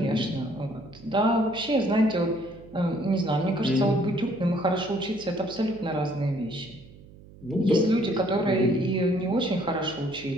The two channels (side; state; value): right; noise; hum, 21 dB below the sound